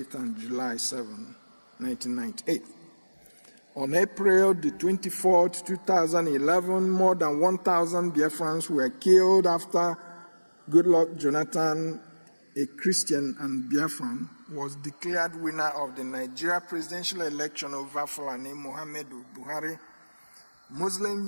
and July 7, 1998. On April the 24th, 2011, more than 1,000 Biafrans were killed after Goodluck Jonathan, a Christian and Biafran, was declared winner of the Nigeria presidential election over Fulani Muhammadu Buhari.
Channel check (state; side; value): inverted; both; correlation -1.00